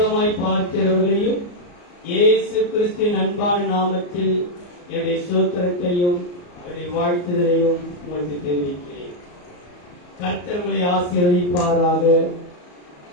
பார்க்கிறவர்களையும் இயேசு கிறிஸ்துவின் அன்பான நாமத்தில் என்னுடைய ஸ்தோத்திரத்தையும் என்னுடைய வாழ்த்துதலையும் உங்களுக்கு தெரிவிக்கிறேன். கர்த்தர் உங்களை ஆசீர்வதிப்பாராக.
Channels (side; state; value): right; late; 34 ms